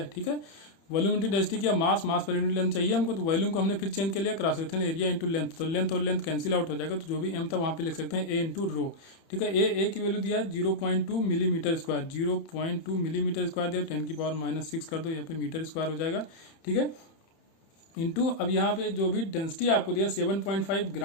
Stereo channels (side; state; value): right; late; 31 ms